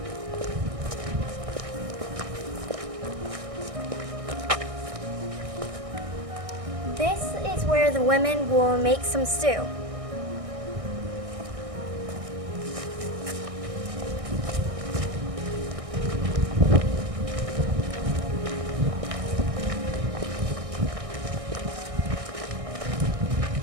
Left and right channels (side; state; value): left; late; 1.6 ms